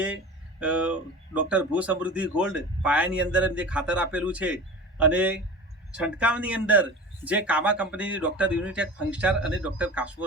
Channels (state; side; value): normal; both; correlation 0.35